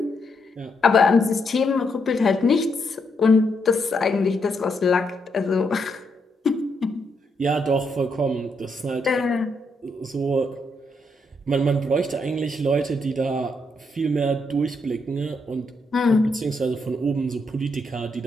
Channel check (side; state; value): both; normal; correlation 0.78